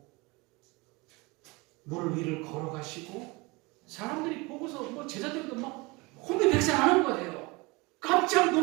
물 위를 걸어가시고 사람들이 보고서 뭐 제자들도 막 혼비백산하는 거예요. 깜짝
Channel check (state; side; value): quieter; left; 25.2 dB